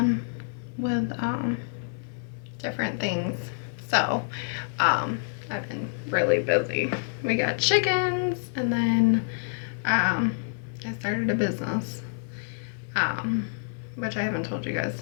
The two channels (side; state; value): right; silent; digital silence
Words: with different things, so I've been really busy. We got chickens, and then I started a business. Which I haven't told you guys